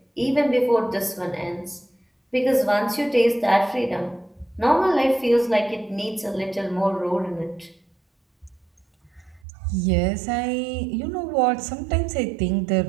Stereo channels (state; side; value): drops out; left; at 9.4 s